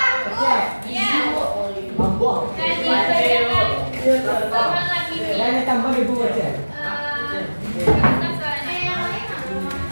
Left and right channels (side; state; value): both; inverted; correlation -1.00